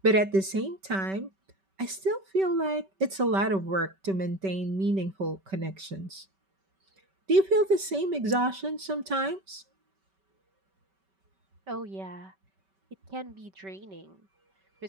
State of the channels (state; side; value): late; left; 5.2 ms